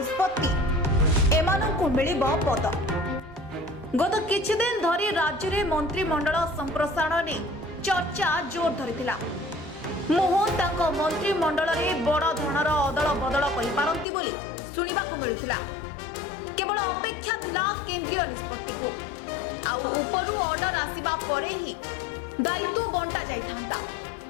एमानंकु मिलिबो पद। गत किछि दिन धरी राज्य रे मंत्रिमंडल संप्रसारण ने चर्चा जोर धरिथिला। मोहन तांको मंत्रिमंडल रे बड़ धरणर अदल बदल करि पारंती बोली सुनिबाकु मिलुथिला। केवल अपेक्षा थिला केंद्रीय निष्पत्ति को आउ उपरु ऑर्डर आसीबा परे ही दायित्व बंटा जाइथांता।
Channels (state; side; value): drops out; right; at 14.1 s